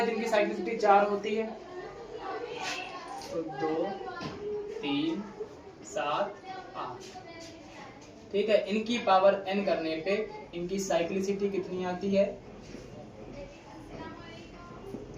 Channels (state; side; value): identical; both; correlation 1.00